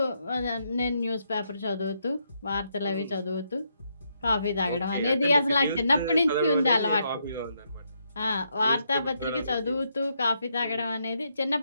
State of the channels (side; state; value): both; inverted; correlation -0.78